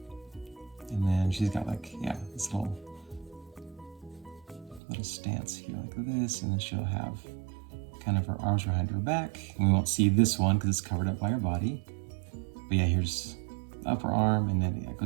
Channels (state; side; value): drops out; left; at 4.8 s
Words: And then she's got like, yeah, this little stance here like this. And then she'll have kind of her arms behind her back. And we won't see this one because it's covered up by her body. But yeah, here's the upper arm, and then it